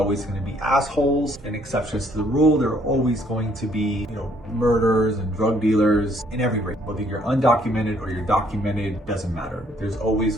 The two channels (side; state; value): both; normal; correlation 0.65